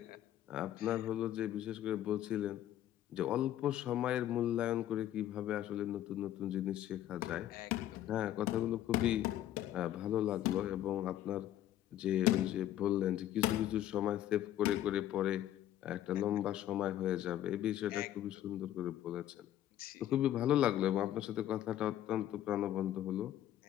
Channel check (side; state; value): right; quieter; 12.3 dB